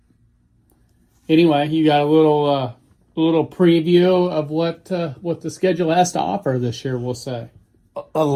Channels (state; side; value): identical; both; correlation 1.00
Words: Anyway, you got a little preview of what the schedule has to offer this year, we'll say. A